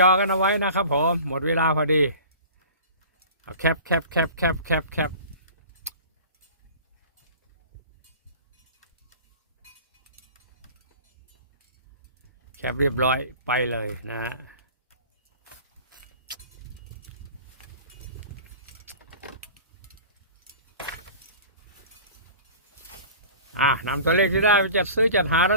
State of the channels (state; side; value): inverted; both; correlation -0.41